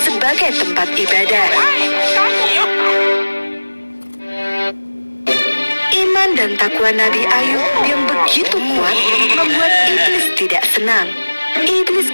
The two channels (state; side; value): inverted; both; correlation -1.00